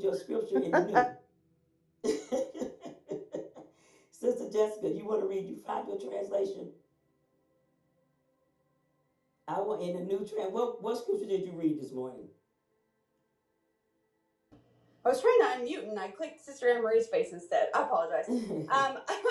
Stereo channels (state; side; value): identical; both; correlation 1.00